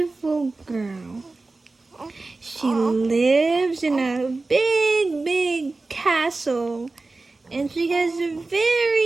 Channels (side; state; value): left; quieter; 3.4 dB